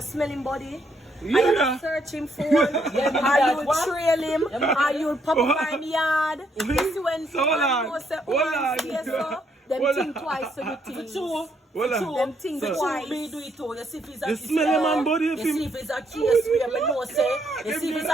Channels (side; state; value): both; normal; correlation 0.73